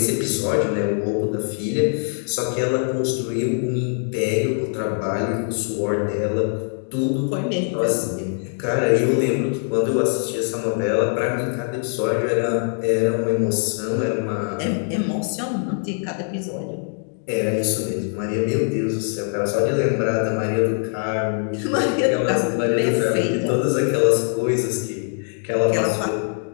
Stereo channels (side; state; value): right; silent; 55 dB below the other